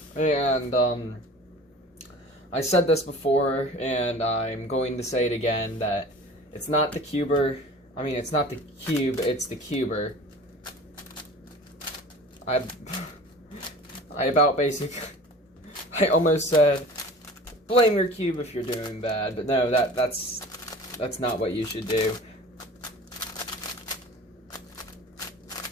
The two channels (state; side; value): normal; both; correlation 0.41